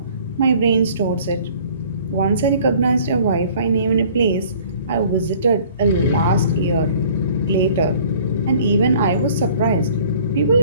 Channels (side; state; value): both; inverted; correlation -0.53